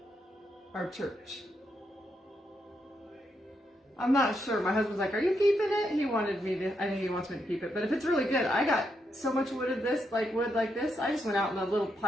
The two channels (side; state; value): both; normal; correlation 0.81